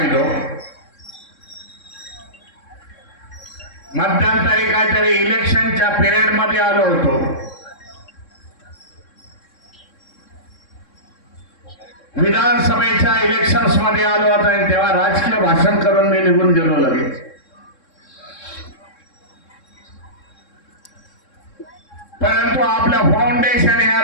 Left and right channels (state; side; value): late; right; 3.7 ms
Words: मध्यंतरी काहीतरी इलेक्शनच्या पिरियड मध्ये आलो होतो. विधानसभेच्या इलेक्शन्स मध्ये आलो होतो आणि तेव्हा राजकीय भाषण करून मी निघून गेलो लगेच. परंतु आपलं फाउंडेशन